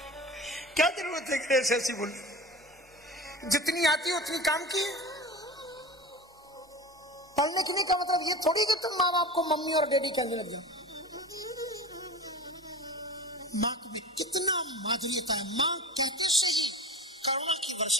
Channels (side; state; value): both; normal; correlation 0.34